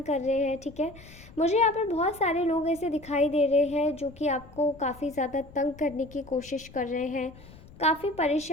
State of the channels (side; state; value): left; noise; rumble, 20 dB below the sound